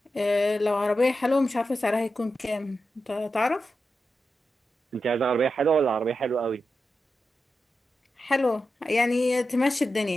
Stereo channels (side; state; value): both; normal; correlation 0.89